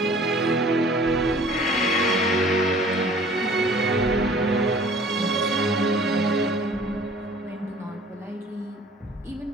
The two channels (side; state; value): both; normal; correlation 0.51